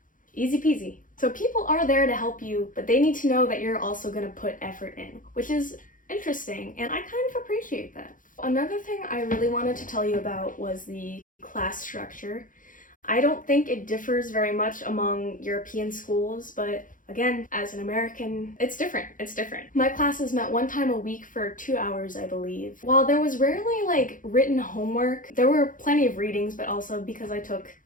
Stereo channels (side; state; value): right; late; 0.39 ms